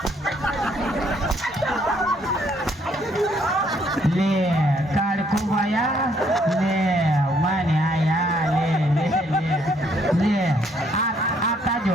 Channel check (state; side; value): normal; both; correlation 0.68